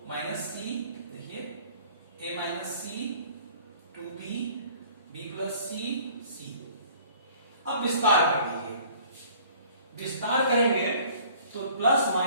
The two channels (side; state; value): both; inverted; correlation -0.53